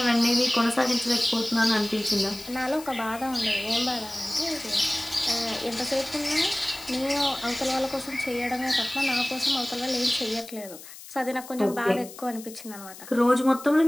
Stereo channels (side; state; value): left; noise; hiss, 16 dB below the sound